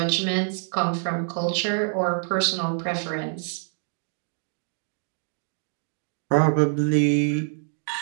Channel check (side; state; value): left; silent; digital silence